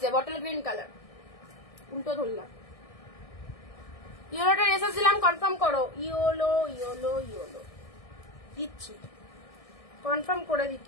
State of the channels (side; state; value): right; late; 1.6 ms